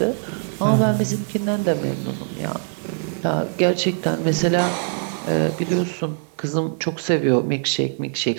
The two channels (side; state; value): left; silent; digital silence